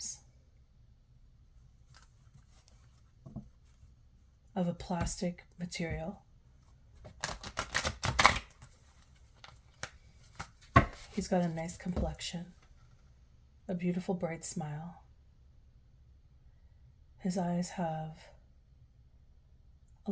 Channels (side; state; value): both; identical; correlation 1.00